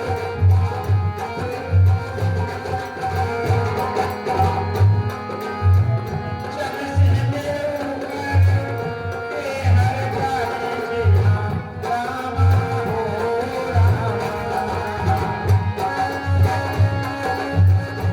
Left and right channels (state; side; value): identical; both; correlation 1.00